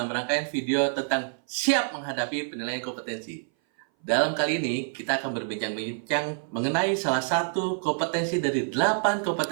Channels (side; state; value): left; silent; 58 dB below the other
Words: rangkaian video tentang siap menghadapi penilaian kompetensi. Dalam kali ini, kita akan berbincang-bincang mengenai salah satu kompetensi dari 8